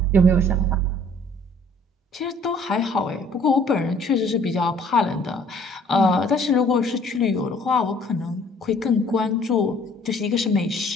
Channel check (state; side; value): normal; both; correlation 0.56